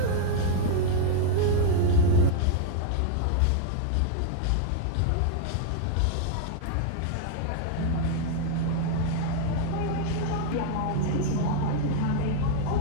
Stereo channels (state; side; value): different; both; correlation 0.00